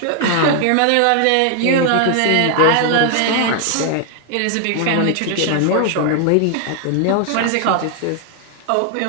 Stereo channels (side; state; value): both; different; correlation 0.00